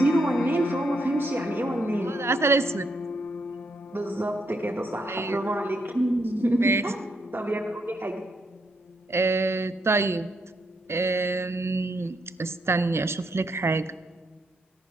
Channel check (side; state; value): both; normal; correlation 0.78